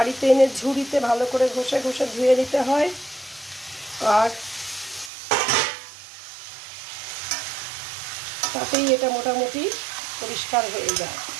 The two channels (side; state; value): left; drops out; at 5.1 s